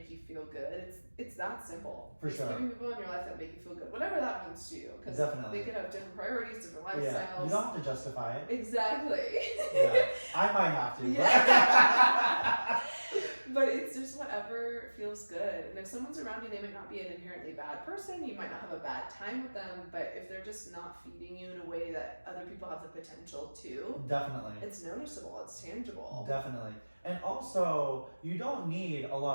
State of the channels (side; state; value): both; inverted; correlation -1.00